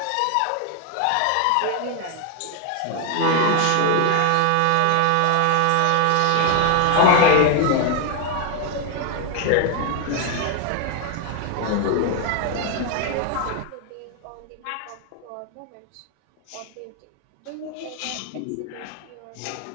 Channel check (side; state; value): both; different; correlation 0.01